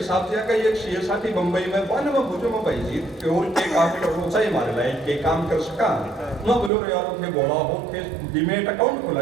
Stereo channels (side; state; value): left; drops out; at 6.7 s